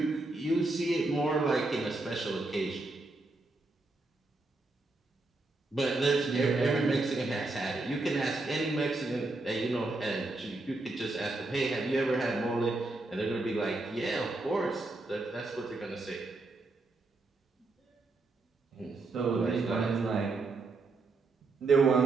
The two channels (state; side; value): quieter; left; 3.2 dB